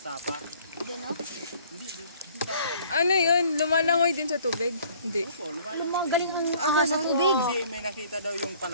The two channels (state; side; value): inverted; both; correlation -0.56